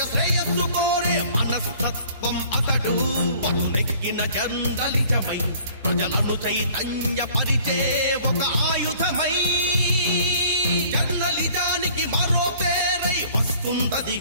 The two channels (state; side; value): inverted; both; correlation -0.53